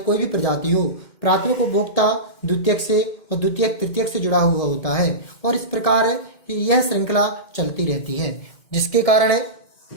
भी प्रजाति हो प्राथमिक उपभोक्ता द्वितीयक से और द्वितीयक तृतीयक से जुड़ा हुआ होता है और इस प्रकार यह श्रृंखला चलती रहती है, जिसके कारण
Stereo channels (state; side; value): late; right; 2.1 ms